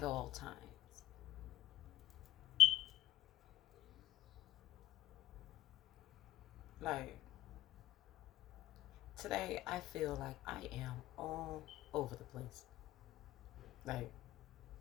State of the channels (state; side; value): quieter; right; 15.2 dB